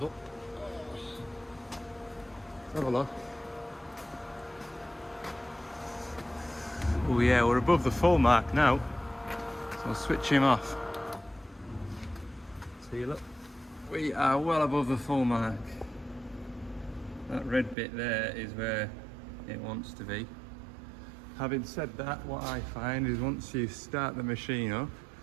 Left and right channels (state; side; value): drops out; left; at 17.8 s